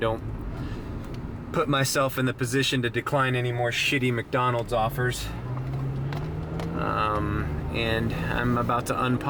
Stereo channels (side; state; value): both; identical; correlation 1.00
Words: put myself in the position to decline any more shitty McDonald's offers. And I'm about to